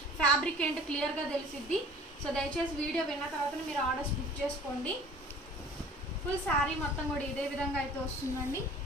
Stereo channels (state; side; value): normal; both; correlation 0.47